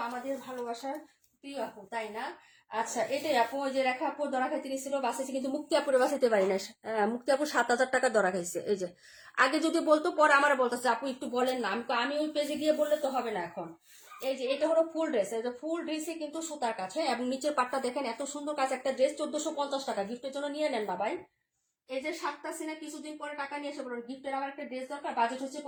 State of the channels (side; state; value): both; identical; correlation 1.00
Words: আমাদের ভালোবাসার প্রিয় আপু, তাই না? আচ্ছা, এটাই আপু। ওই যে রেখা আপু দরা খাইতে নিছিল, বাঁচাইছে, কিন্তু মুক্তি আপুরে বাঁচাইতে পারি না। মুক্তি আপু 7000 টাকা দরা খাইছে। এই যে আগে যদি বলতো, পরে আমার বলতেছে আপু একটু বলেন না। আমি ওই পেজে গিয়ে বললে তো হবে না এখন। এই যে এটা হলো ফুল ড্রেস, এই যে ফুল ড্রেসে কিন্তু সুতার কাজ, হ্যাঁ, এবং নিচের পাটটা দেখেন এত সুন্দর কাজ। একটা ড্রেস 1450 টাকা, গিফটের জন্য নিয়ে নেন না ভাই। এই যে 7টা সিনে কিছুদিন পরে টাকা নিয়ে এসে বলুন গিফটের আমার একটা ড্রেস দরকার, বাজেট হচ্ছে